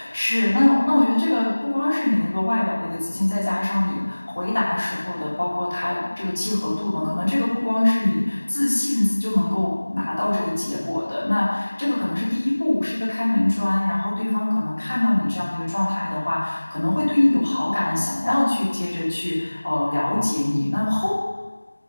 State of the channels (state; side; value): inverted; both; correlation -1.00